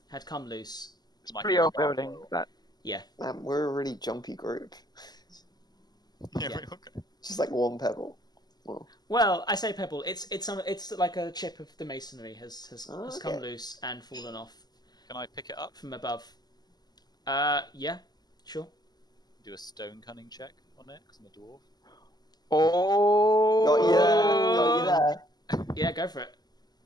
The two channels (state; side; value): late; right; 0.20 ms